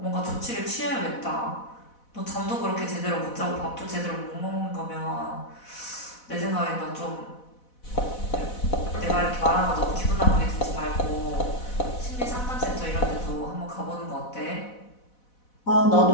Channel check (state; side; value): late; right; 4.1 ms